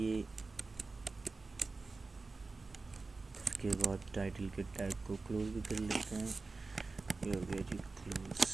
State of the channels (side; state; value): left; quieter; 3.8 dB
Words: उसके बाद टाइटल के टैग को क्लोज भी कर लेते हैं। ये हो गया जी क्लोज।